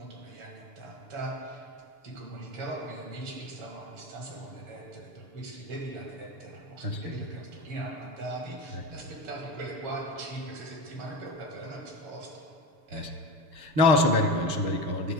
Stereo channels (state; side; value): late; left; 6.9 ms